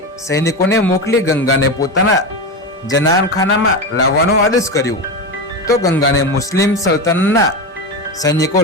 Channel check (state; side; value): normal; both; correlation 0.18